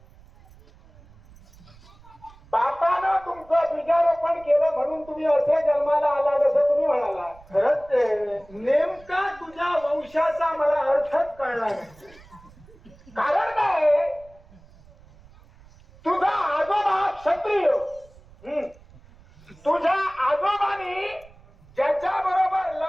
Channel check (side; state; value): right; noise; rumble, 25 dB below the sound